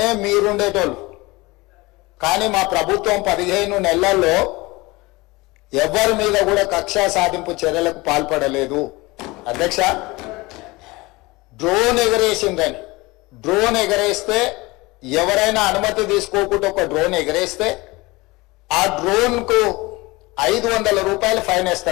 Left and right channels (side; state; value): right; quieter; 22.6 dB